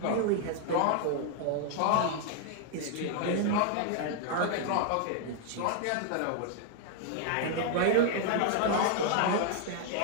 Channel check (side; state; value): both; different; correlation 0.00